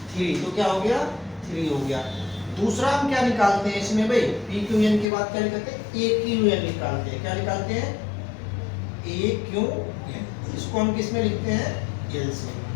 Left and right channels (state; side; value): drops out; right; at 5.1 s